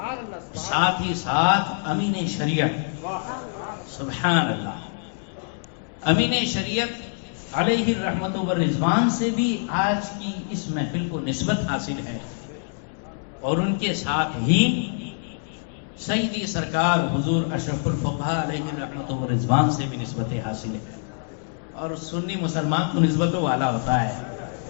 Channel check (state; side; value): silent; right; digital silence